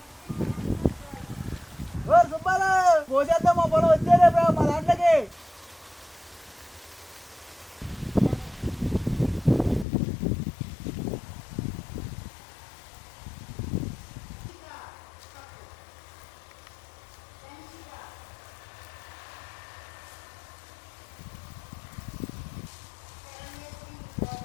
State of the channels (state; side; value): drops out; right; at 9.9 s